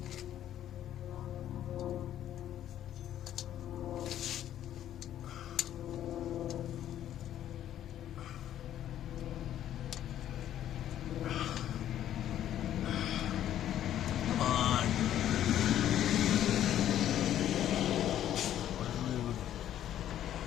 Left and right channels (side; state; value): right; quieter; 11.4 dB